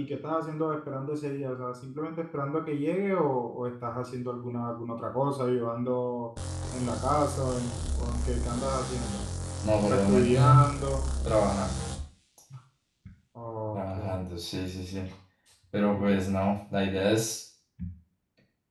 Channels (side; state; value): both; identical; correlation 1.00